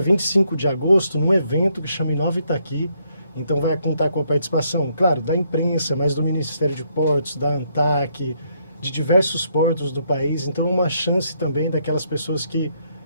de agosto, num evento que chama Inova Itaqui. Então vai contar com a participação, claro, da imprensa, mas do Ministério de Portos, da ANTAC, de diversos portos do país. Então é uma chance também daquelas pessoas que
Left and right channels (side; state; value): both; inverted; correlation -0.73